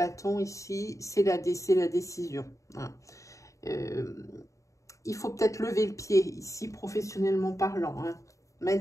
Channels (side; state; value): right; late; 0.15 ms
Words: ici, c'est la décision. Hein. Il faut peut-être lever le pied ici, professionnellement parlant. Hein.